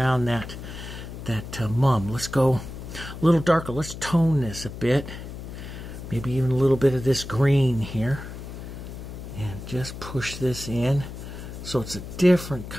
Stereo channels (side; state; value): left; noise; hum, 10 dB below the sound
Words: that mum. Let's go a little darker. Let's tone this a bit. Maybe even a little bit of this green here. And just push this in. So it's a different